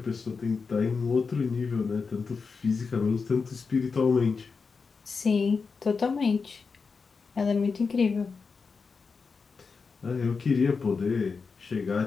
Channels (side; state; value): right; quieter; 5.0 dB